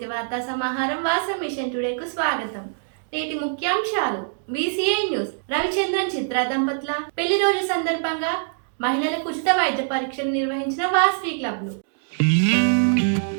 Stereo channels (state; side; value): silent; left; digital silence